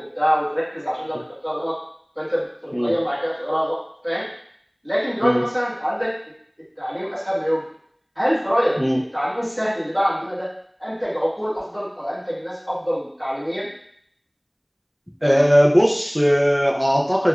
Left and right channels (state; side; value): identical; both; correlation 1.00